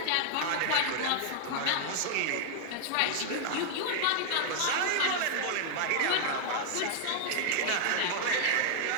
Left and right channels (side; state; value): both; different; correlation 0.00